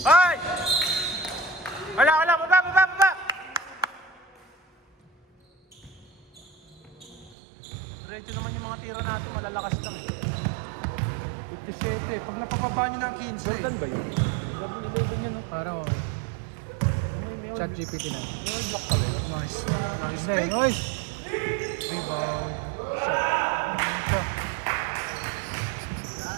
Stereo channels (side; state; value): left; drops out; at 7.4 s